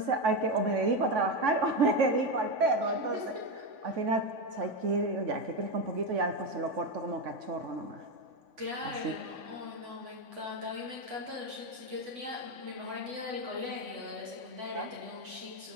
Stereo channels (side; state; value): left; late; 3.5 ms